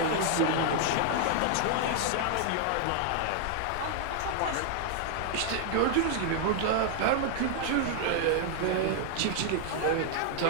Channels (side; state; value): both; different; correlation 0.00